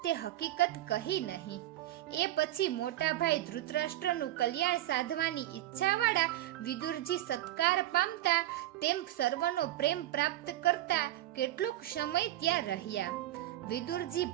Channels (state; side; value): quieter; left; 14.9 dB